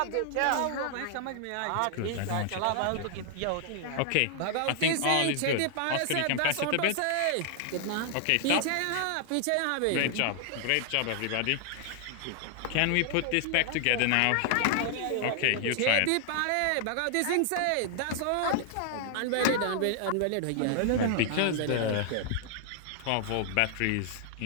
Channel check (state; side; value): different; both; correlation 0.00